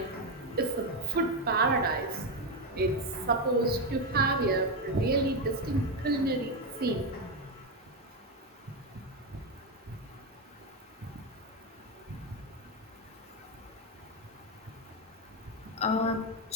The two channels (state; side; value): normal; both; correlation 0.09